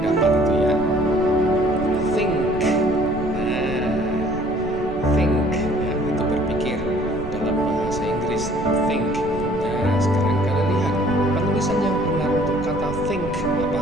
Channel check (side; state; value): right; noise; rumble, 10 dB below the sound